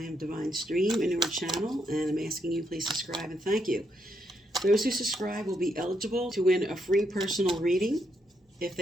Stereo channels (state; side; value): normal; both; correlation 0.78